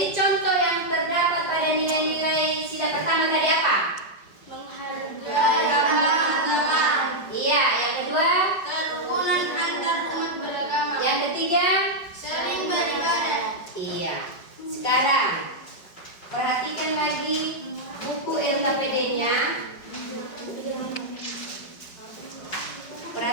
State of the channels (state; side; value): late; right; 5.2 ms